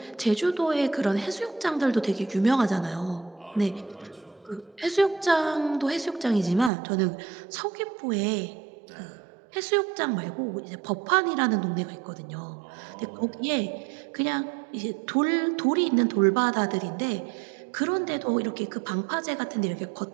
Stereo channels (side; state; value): left; drops out; at 6.7 s